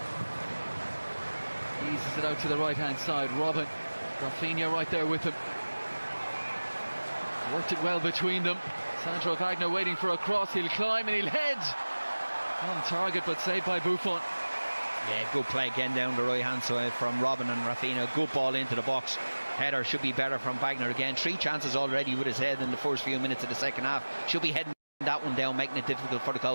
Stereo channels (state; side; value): inverted; both; correlation -1.00